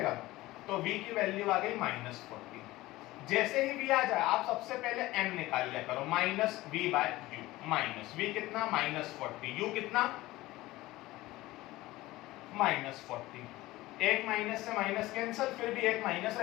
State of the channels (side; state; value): right; quieter; 18.3 dB